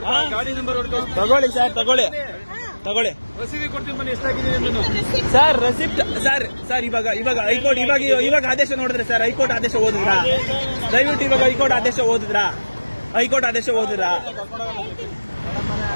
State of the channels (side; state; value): both; inverted; correlation -1.00